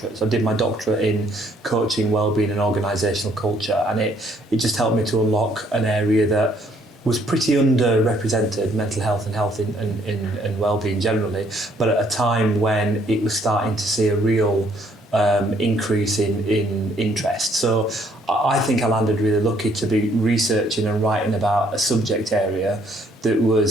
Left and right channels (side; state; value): both; normal; correlation 0.65